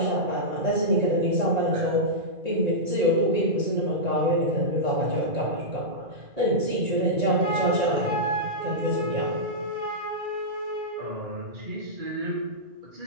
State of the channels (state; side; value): late; left; 1.8 ms